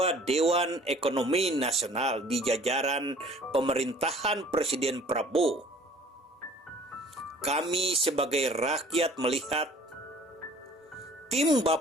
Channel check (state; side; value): normal; both; correlation 0.51